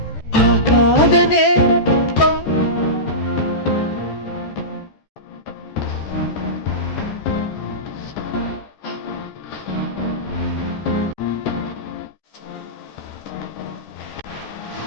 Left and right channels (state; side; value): late; right; 14 ms